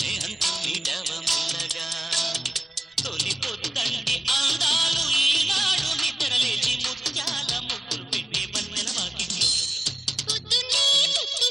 మీటవ మెల్లగా తొలి పొద్దండి అందాలు ఈనాడు నిద్రలేచి ముత్యాల ముగ్గులు పెట్టే వన్నెల వాకిట్లో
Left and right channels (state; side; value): normal; both; correlation 0.96